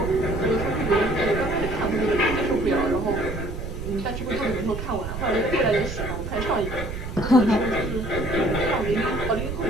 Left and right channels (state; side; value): noise; right; rumble, 7 dB below the sound